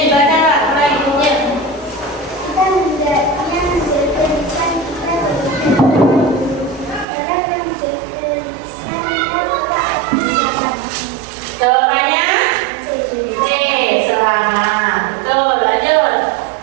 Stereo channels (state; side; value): drops out; left; at 7.1 s